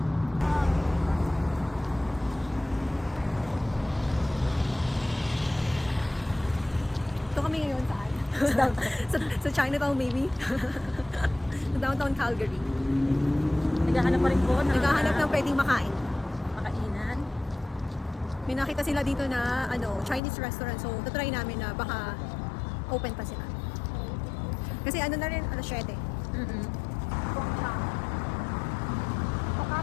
Ito kami ngayon saan? sa Chinatown maybe? Sa downtown Calgary. Naghahanap pa rin po ng Naghahanap ng pwedeng makain. makainan. May nakita sila dito na ano, Chinese restaurant. So, try namin na baka open pa sila. Kasi ano na rin, alas 7.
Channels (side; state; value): right; drops out; at 20.2 s